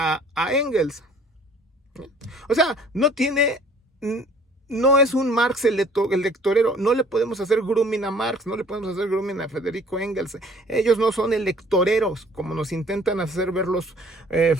Engels. O sea, no es un Marx el lectorero. No le podemos hacer grooming a Marx, no le podemos hacer grooming a Federico Engels. Ellos no son electoreros, como nos intentan hacer ver los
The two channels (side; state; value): both; normal; correlation 0.55